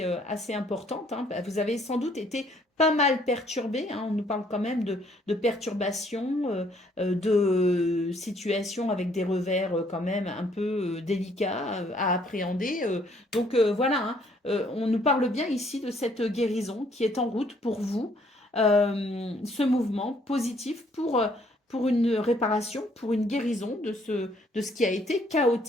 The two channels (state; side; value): normal; both; correlation 0.65